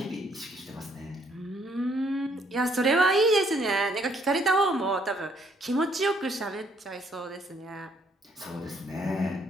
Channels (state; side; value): normal; both; correlation 0.67